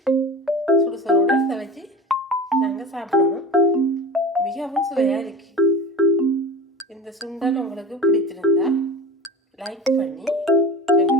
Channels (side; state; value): both; normal; correlation 0.33